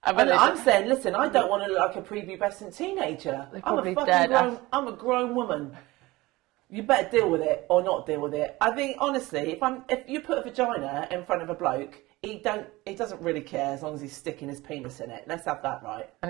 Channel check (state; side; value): quieter; left; 20.2 dB